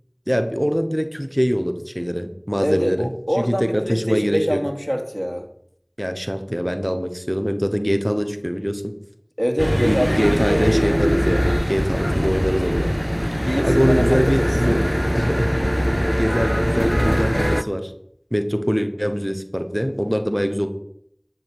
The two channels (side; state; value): both; identical; correlation 1.00